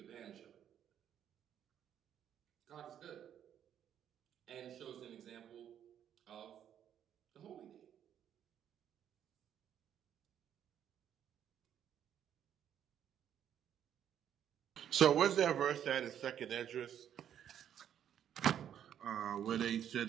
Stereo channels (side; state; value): left; quieter; 9.7 dB